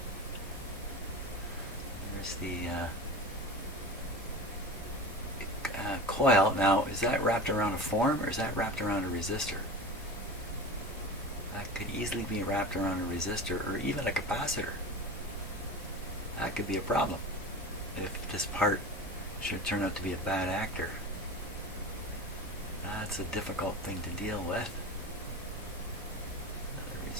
There's the coil. Now, is that wrapped around a form or is that wrapped around a resistor? That could easily be wrapped around a resistor or even a capacitor. That could be a problem if this part should turn out to be a bad actor. That's a difficult thing to deal with. Another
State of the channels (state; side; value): normal; both; correlation 0.30